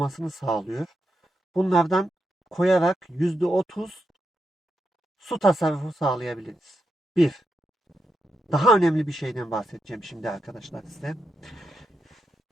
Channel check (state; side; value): normal; both; correlation 0.85